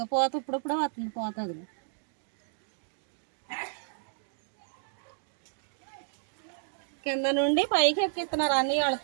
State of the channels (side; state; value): left; silent; digital silence